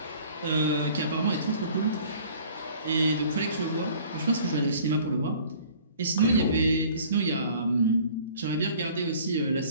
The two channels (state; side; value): inverted; both; correlation -0.51